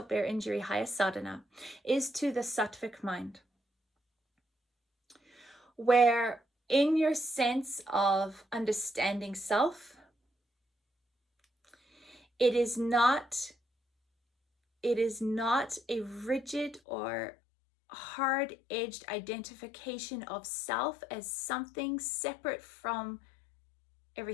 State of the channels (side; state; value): right; drops out; at 16.8 s